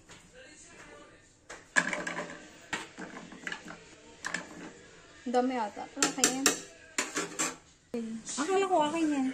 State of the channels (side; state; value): both; identical; correlation 1.00